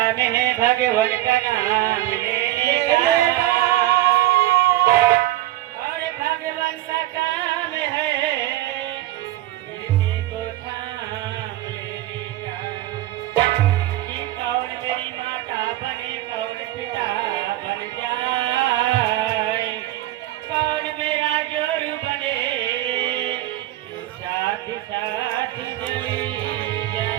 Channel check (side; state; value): left; quieter; 15.4 dB